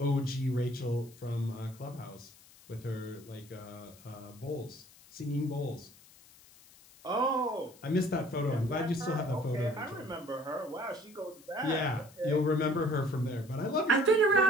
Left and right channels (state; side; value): noise; left; hiss, 24 dB below the sound